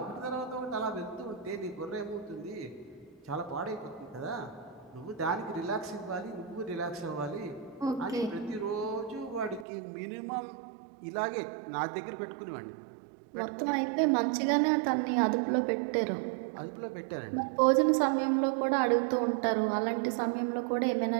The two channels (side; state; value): left; drops out; at 9.7 s